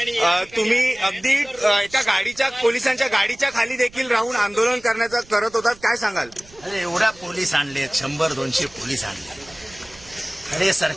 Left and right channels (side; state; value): right; noise; rumble, 24 dB below the sound